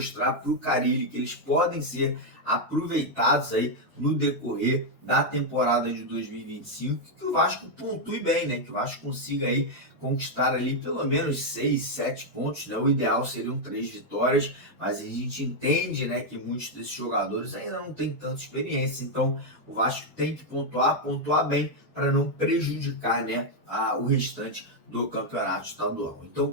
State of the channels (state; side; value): normal; both; correlation 0.00